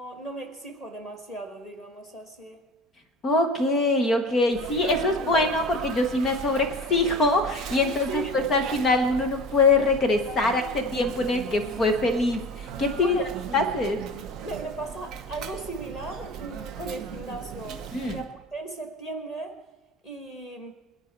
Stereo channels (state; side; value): normal; both; correlation 0.35